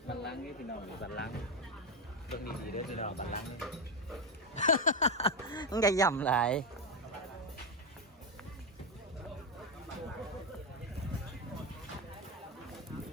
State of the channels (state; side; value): normal; both; correlation 0.09